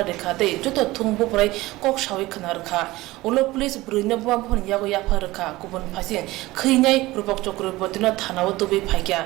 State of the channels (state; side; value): quieter; left; 18.9 dB